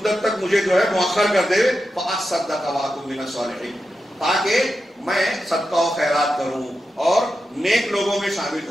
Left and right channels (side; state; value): both; normal; correlation 0.89